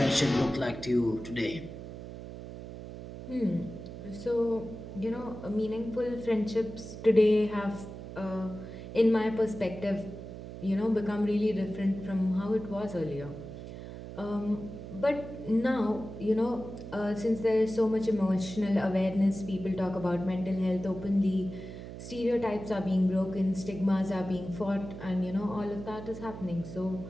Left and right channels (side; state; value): right; noise; hum, 11 dB below the sound